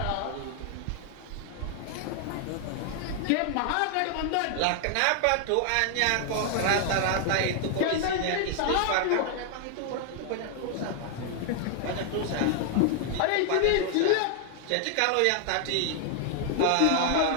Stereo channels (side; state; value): both; different; correlation 0.00